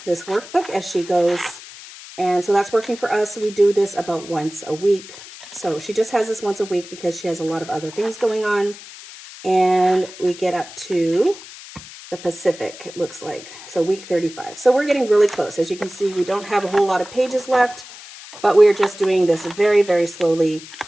this workbook as she goes. And so that's working for us. We do this about once a week. So she just has this once a week because she has a lot of other things going on. And we get up to the Pacific, it looks like. So week 35. So we're getting really close. As you can see, we don't have a whole lot of pages left, but we're just doing this very, very slowly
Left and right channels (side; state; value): left; noise; hiss, 16 dB below the sound